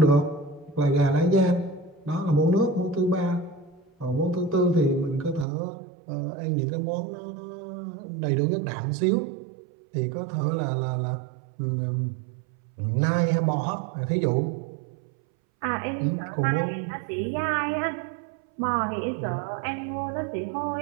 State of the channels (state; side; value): drops out; left; at 5.5 s